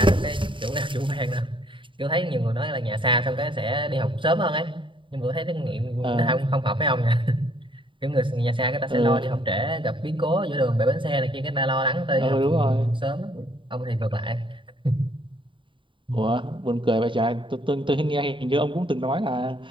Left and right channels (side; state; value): left; late; 0.24 ms